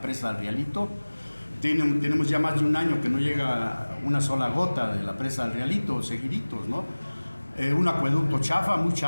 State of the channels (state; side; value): inverted; both; correlation -1.00